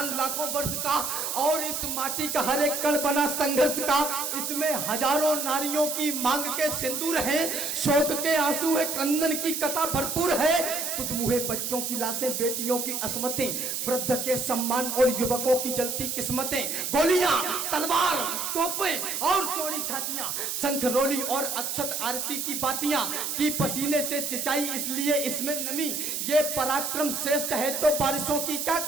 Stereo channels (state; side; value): noise; right; hiss, 2 dB below the sound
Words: लाखों वर्ष का, और इस माटी का हर एक कण बना संघर्ष का। इसमें हजारों नारियों की मांग के सिंदूर है, शोक के आंसू है, क्रंदन की कथा भरपूर है। तुदमुहे बच्चों की लाशें, बेटियों की अस्मतें, वृद्ध के सम्मान और युवकों की जलती किस्मतें, गोलियां, तलवार, तोपें और चौड़ी छातियां, शंख रोली और अक्षत आरती की बातियां, की पसीने से सिंचाई इसलिए इसमें नमी। ये पराक्रम श्रेष्ठ है तो बारिशों की क्या